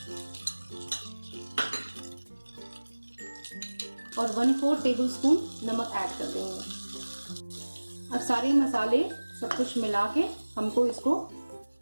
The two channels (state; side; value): inverted; both; correlation -1.00